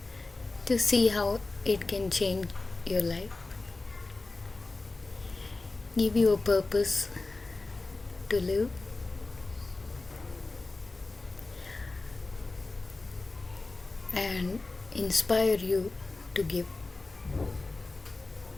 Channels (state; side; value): quieter; right; 3.4 dB